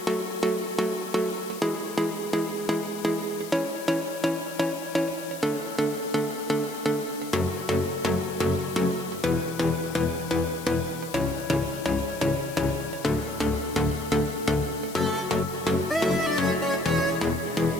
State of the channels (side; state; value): left; noise; hiss, 14 dB below the sound